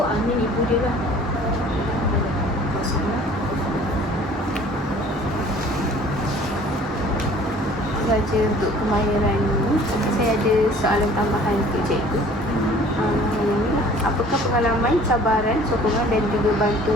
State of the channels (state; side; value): normal; both; correlation 0.51